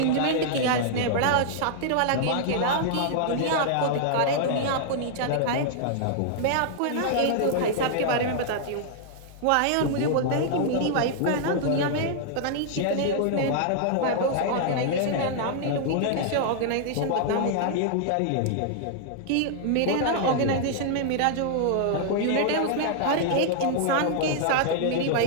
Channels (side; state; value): both; different; correlation -0.01